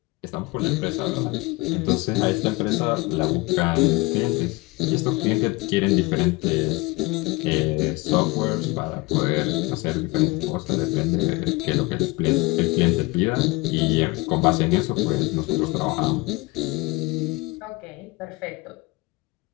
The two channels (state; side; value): quieter; right; 23.7 dB